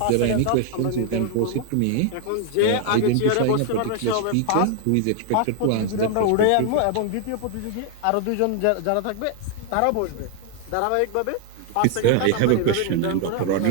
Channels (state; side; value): different; both; correlation 0.00